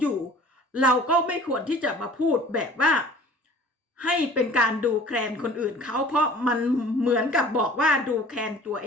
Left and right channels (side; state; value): both; normal; correlation 0.46